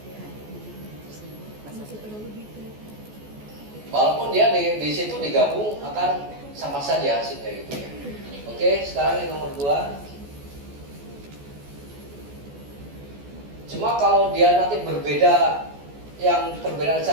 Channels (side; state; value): left; late; 14 ms